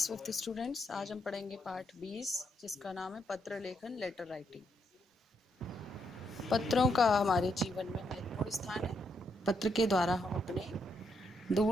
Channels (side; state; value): both; normal; correlation 0.78